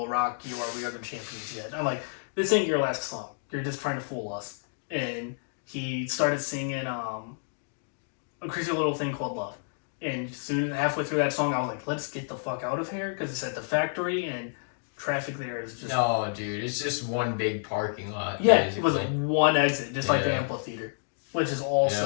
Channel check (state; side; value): silent; right; digital silence